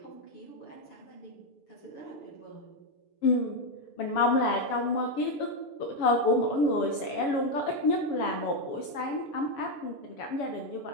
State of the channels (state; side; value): late; right; 7.1 ms